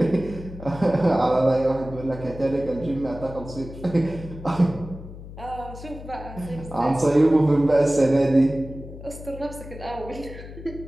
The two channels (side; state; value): left; noise; hum, 14 dB below the sound